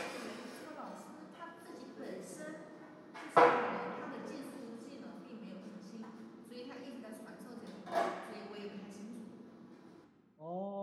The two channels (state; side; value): identical; both; correlation 1.00